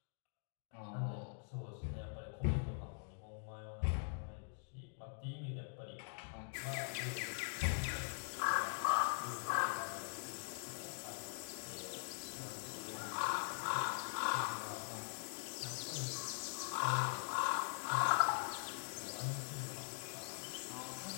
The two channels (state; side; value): silent; right; digital silence